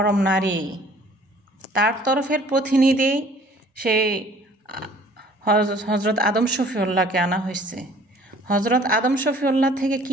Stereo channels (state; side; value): normal; both; correlation 0.54